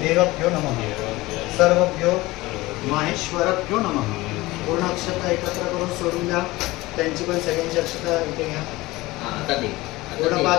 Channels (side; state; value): right; quieter; 19.8 dB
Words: देवभ्यो नमः सर्वभ्यो माहेश्वरभ्यो नमः पूर्ण अक्षता एकत्र करून सोडून द्या त्यांची पण सगळ्यांची अक्षता इथे घ्या पूर्ण